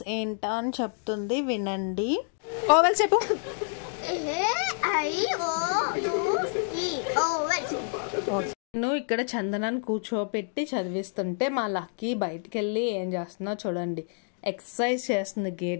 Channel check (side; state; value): right; silent; 57 dB below the other